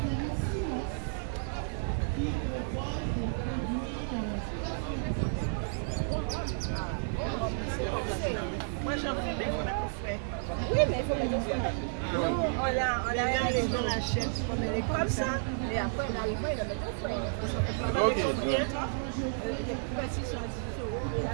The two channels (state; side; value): silent; left; digital silence